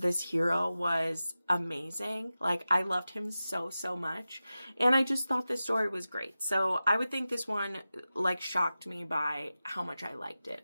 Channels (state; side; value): inverted; both; correlation -0.94